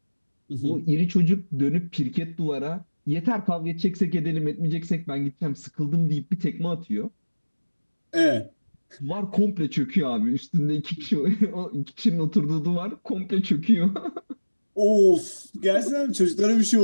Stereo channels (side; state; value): both; inverted; correlation -1.00